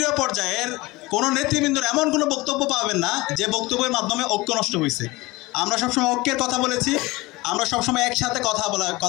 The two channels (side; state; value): right; quieter; 21.5 dB